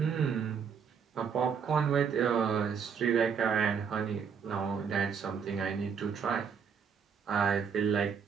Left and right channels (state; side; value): quieter; left; 6.7 dB